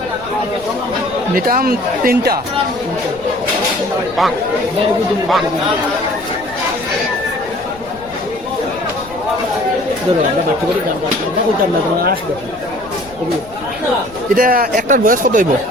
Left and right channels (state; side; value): noise; left; rumble, 20 dB below the sound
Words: নিতাম তিনটা ধরো আমরা বাচ্চা করে দাম না কইতাম না তোমার আসবে এটা একটার বয়স কত হইব